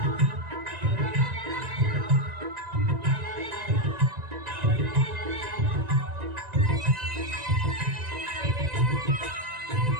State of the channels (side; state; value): left; late; 1.9 ms